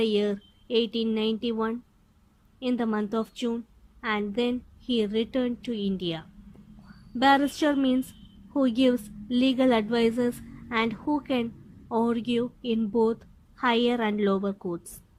year 1891 in the month of June and then he returned to India. Barrister means who gives legal advices and who can argue in both higher and lower courts.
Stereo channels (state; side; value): identical; both; correlation 1.00